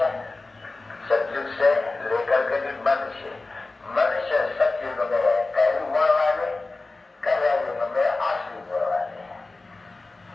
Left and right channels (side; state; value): right; quieter; 3.4 dB